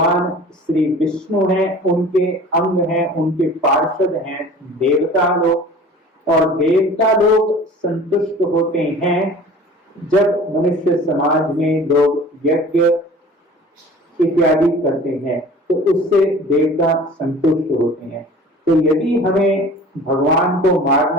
श्री विष्णु हैं, उनके अंग हैं, उनके पार्षद हैं देवता लोग, और देवता लोग संतुष्ट होते हैं जब मनुष्य समाज में लोग यज्ञ इत्यादि करते हैं, तो उससे देवता संतुष्ट होते हैं। तो यदि हमें भगवान को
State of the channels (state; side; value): normal; both; correlation 0.44